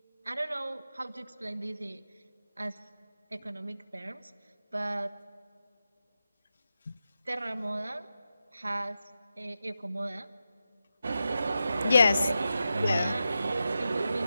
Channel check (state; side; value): inverted; both; correlation -0.91